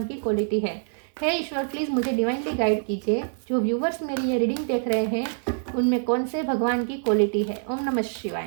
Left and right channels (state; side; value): silent; left; digital silence